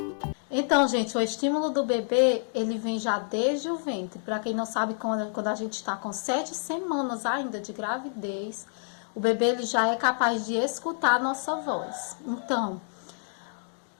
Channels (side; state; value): right; silent; digital silence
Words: Então, gente, o estímulo do bebê, ele vem já desde o ventre. Para quem não sabe, quando a gente está com 7 semanas ainda de gravidez, o bebê ele já é capaz de escutar a nossa voz. Então,